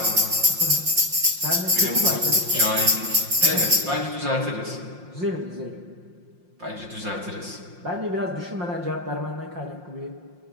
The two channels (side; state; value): left; late; 5.6 ms